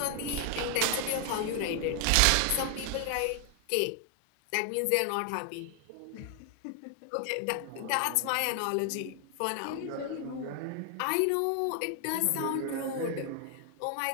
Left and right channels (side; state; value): both; different; correlation 0.00